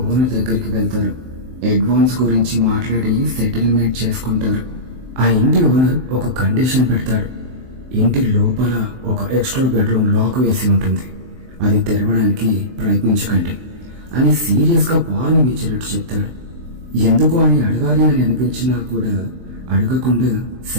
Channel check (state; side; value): late; left; 23 ms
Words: ఓనర్ దగ్గరికి వెళ్తారు. అడ్వాన్స్ గురించి మాట్లాడి సెటిల్మెంట్ చేసుకుంటారు. ఆ ఇంటి ఓనర్ ఒక కండిషన్ పెడతాడు. ఇంటి లోపల ఒక ఎక్స్ట్రా బెడ్రూమ్ లాక్ వేసి ఉంటుంది, అది తెరవడానికి ప్రయత్నించకండి అని సీరియస్గా వార్నింగ్ ఇచ్చినట్టు చెప్తాడు. ఎందుకు అని అడగాలి అని అనిపించినా కూడా అడగకుండా